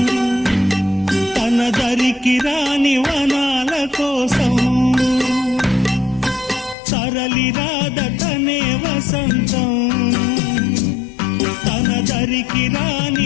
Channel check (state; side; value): drops out; right; at 6.8 s